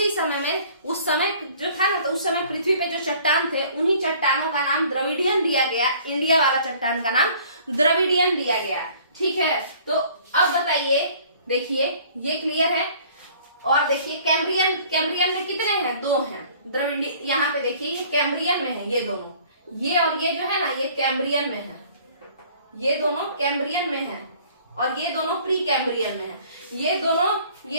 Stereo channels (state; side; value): inverted; both; correlation -0.53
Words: समय में, उस समय जो था ना, तो उस समय पृथ्वी पे जो चट्टान थे उन्हीं चट्टानों का नाम द्रविडियन दिया गया। इंडिया वाला चट्टान का नाम द्रविडियन दिया गया। ठीक है, तो अब बताइए, देखिए ये क्लियर है। और देखिए कैम्ब्रियन, कैम्ब्रियन में कितने हैं? 2 हैं। द्रविडियन यहाँ पे देखिए ये कैम्ब्रियन में है, ये दोनों, ये और ये जो है ना, ये कैम्ब्रियन में है, ये दोनों कैम्ब्रियन में है और ये दोनों प्री कैम्ब्रियन में है। ये